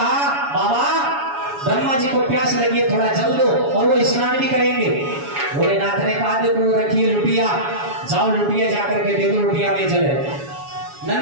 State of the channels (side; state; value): left; late; 7.1 ms